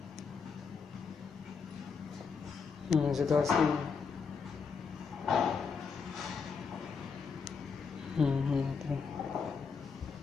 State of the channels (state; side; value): quieter; right; 5.5 dB